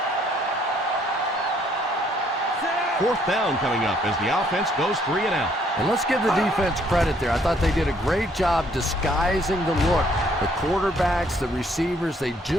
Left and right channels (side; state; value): both; normal; correlation 0.65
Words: Fourth down coming up as the offense goes 3 and out. And let's give the defense credit there. I thought they did a great job disguising the look. The quarterbacks, the receivers, they